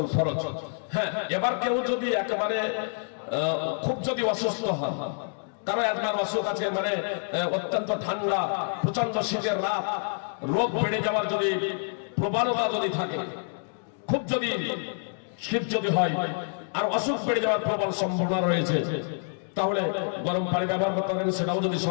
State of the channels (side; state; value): right; silent; digital silence